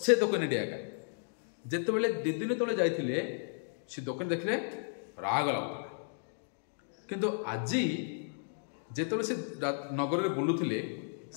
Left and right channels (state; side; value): silent; right; digital silence